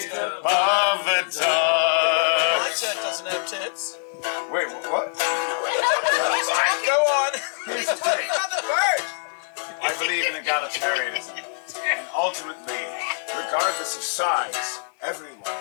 above the door. Alexa doesn't have tits. Wait, what? Go on. Here's the thing. I believe in egalitarianism. And ultimately, regardless of size, everyone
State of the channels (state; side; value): silent; right; 63 dB below the other